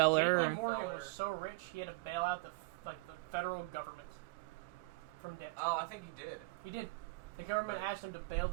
J.P. Morgan was so rich he had to bail out the federal government from debt. Oh, I think he did. He did. The government asked him to bail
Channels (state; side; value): quieter; left; 26.7 dB